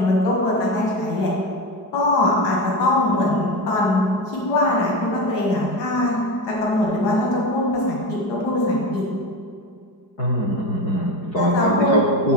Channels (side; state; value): right; late; 4.8 ms